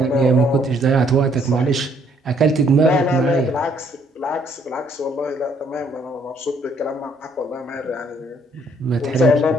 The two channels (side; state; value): both; normal; correlation 0.66